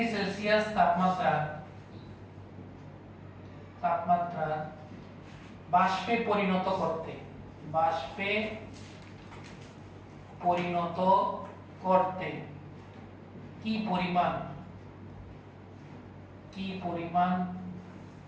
সেলসিয়াস তাপমাত্রা বাষ্পে পরিণত করতে কি পরিমাণ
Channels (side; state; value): both; identical; correlation 1.00